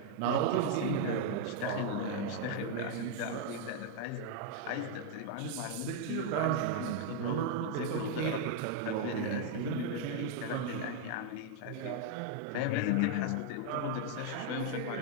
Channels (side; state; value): both; different; correlation 0.00